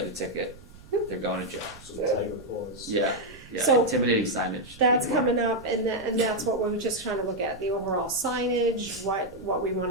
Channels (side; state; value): right; noise; rumble, 22 dB below the sound